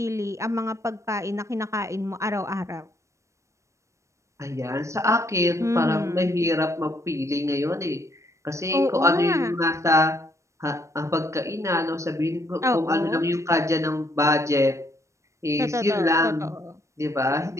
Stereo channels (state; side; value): late; left; 0.15 ms